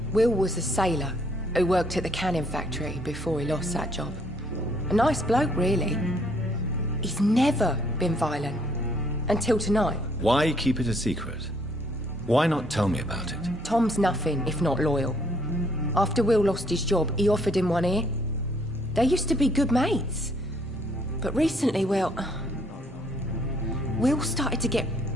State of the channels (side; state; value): both; normal; correlation 0.66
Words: Will was a sailor who worked at the cannon factory before he lost that job. A nice bloke, really. He's never been violent. Until tonight. Why keep it a secret? Why not tell me about it? Tom's nothing if not loyal. After Will lost his job, he offered him one ear. They used to be good mates. But recently, well... Will started to get